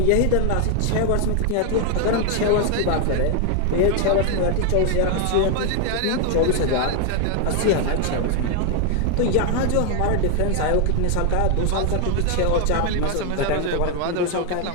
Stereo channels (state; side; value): different; both; correlation 0.00